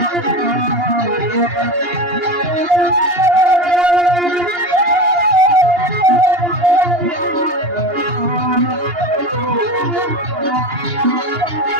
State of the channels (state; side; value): late; left; 2.8 ms